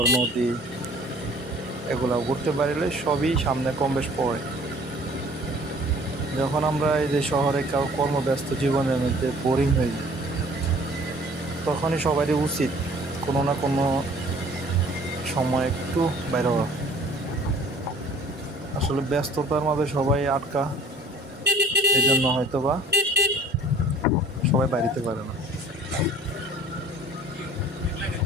নদী, এগুলা ঘুরতে পারলে সবই সামনে কম বেশ পড়ে। যখন আমরা এই যে শহরে কর্মব্যস্ত জীবনের মধ্যে বোরিং হয়ে যাই, তখনই সবারই উচিত কোনো না কোনো সময় একটু বাইরে হওয়া। আসলে ব্যস্ততার মাঝে সবাই আটকা, এই জন্য হয়তো বা সবাই বাড়িতে পারে না।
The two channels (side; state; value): both; normal; correlation 0.52